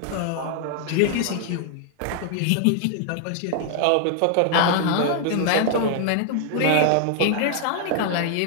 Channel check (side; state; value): both; different; correlation 0.00